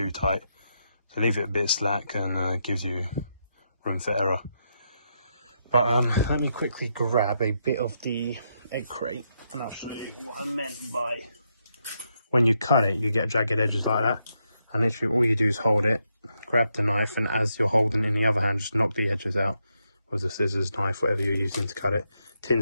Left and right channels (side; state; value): both; inverted; correlation -0.81